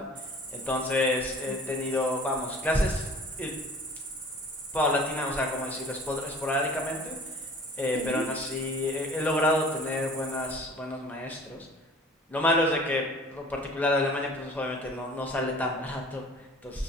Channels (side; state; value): both; normal; correlation 0.47